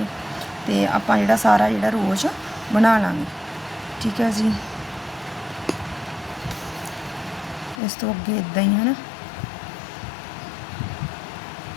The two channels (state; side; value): drops out; right; at 7.8 s